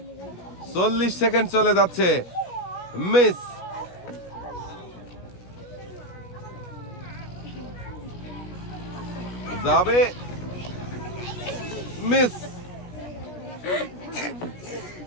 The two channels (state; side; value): late; right; 16 ms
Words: চল্লিশ সেকেন্ড চলে যাচ্ছে। মিস। যাবে, মিস।